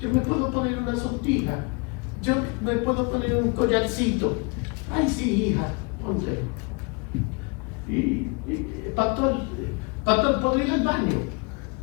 yo me puedo poner una sortija, yo me puedo poner un collarcito. Ay, sí, hija, ponte. Y pastor, ¿puedo ir al baño?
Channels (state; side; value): quieter; right; 31.4 dB